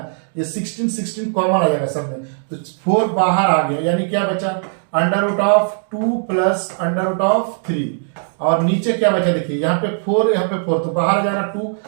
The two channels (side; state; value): left; silent; 67 dB below the other